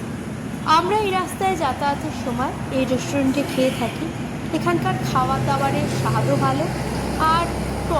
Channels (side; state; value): both; identical; correlation 1.00